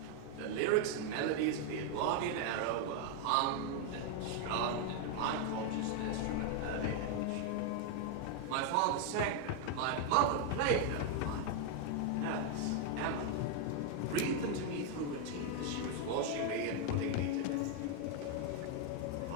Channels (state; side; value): different; both; correlation 0.01